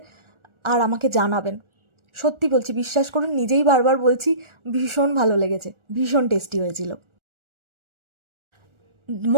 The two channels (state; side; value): late; left; 1.4 ms